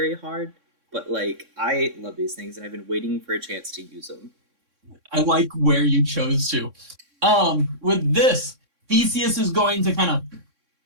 hard, but like I love these things, and I've been waiting for a chance to use them. I like where you chose to. With this, Theseus is going to kind of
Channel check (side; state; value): left; late; 3.6 ms